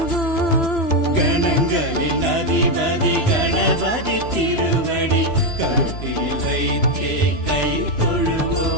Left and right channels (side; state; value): right; late; 3.0 ms